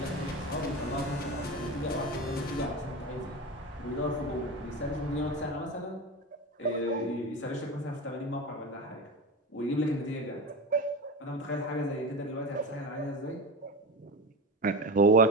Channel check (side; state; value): both; normal; correlation 0.25